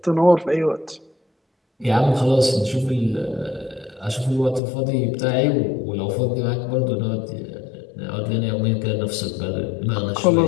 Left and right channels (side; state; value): right; drops out; at 4.6 s